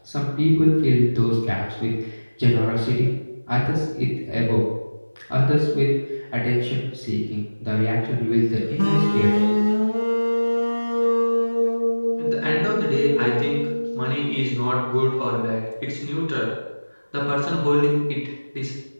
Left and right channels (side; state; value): both; inverted; correlation -1.00